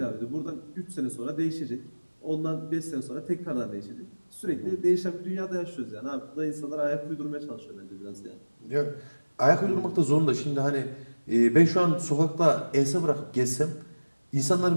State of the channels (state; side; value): inverted; both; correlation -1.00